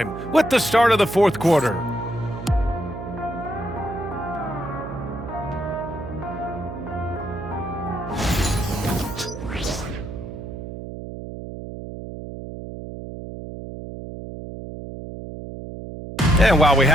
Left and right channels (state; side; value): noise; right; hum, 9 dB below the sound